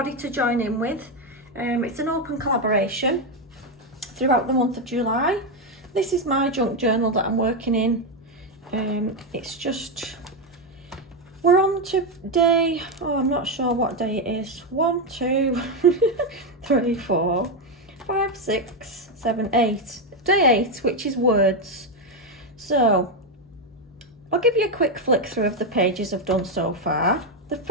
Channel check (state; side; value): normal; both; correlation 0.07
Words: to join in with. It's an open collaboration throughout the month of July. This is my junk journal that I'm working in. We're on to day, I'm not sure what day it is. 1, 2, 3, 4, 5, 6, 7, 8. Day 8, which is words. So, I'll give you a quick flick through of the pages I've done so far. The